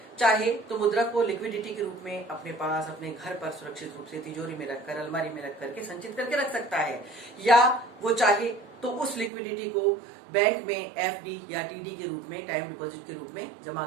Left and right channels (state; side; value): drops out; left; at 9.3 s